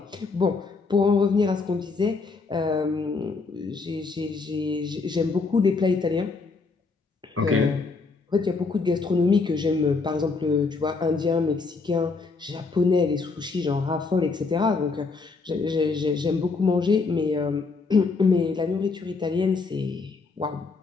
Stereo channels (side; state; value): right; quieter; 4.3 dB